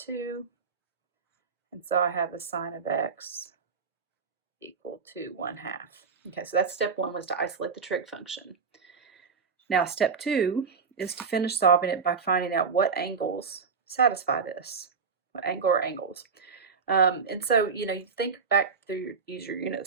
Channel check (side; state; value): left; quieter; 5.6 dB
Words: And so I have the sine of x equal to 1/2. Okay, so that's step 1, was to isolate the trig function. Now step 2 is to finish solving it by finding out what angles satisfy this, what angle or angles. And so, you think back through, use your unit